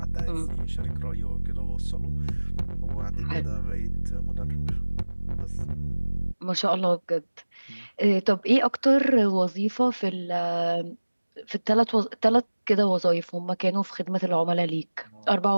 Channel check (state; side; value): inverted; both; correlation -1.00